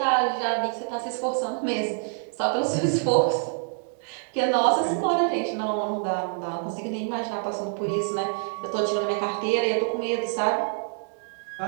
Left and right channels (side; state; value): left; silent; 61 dB below the other